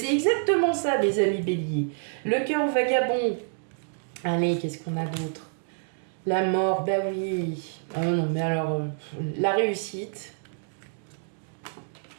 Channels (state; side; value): silent; left; digital silence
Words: exactement ça, mes amis béliers. Le cœur vagabond. Allez, qu'est-ce qu'on a d'autre? La mort, bah oui. Oh non, mais alors, la réussite.